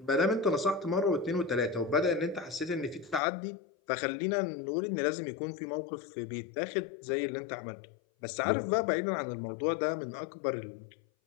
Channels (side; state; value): right; drops out; at 3.2 s